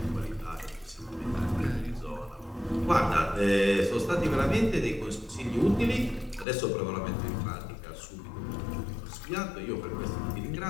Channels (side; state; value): right; drops out; at 6.5 s